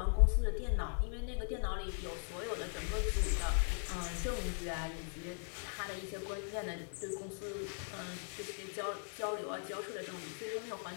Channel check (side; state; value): right; silent; 52 dB below the other